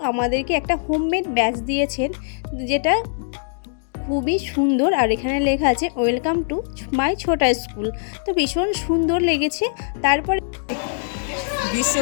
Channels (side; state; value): right; silent; digital silence